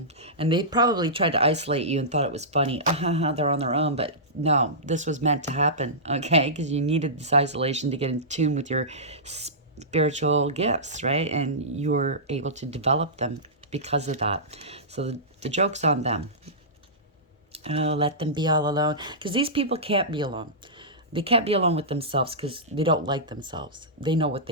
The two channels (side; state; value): both; normal; correlation -0.17